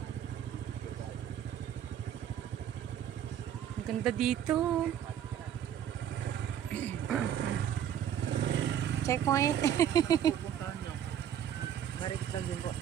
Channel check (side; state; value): left; quieter; 9.8 dB